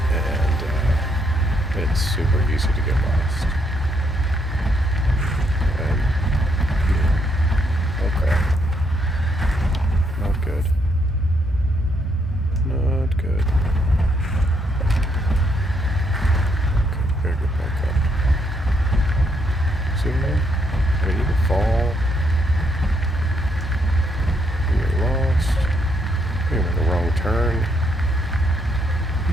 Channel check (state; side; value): normal; both; correlation 0.74